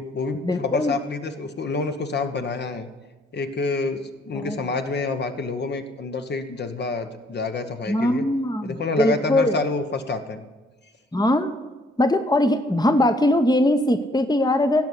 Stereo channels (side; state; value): both; normal; correlation 0.64